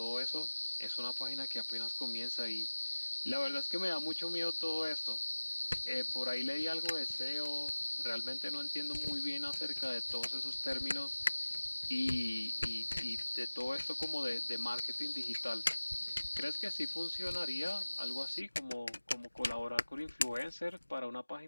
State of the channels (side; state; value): both; inverted; correlation -1.00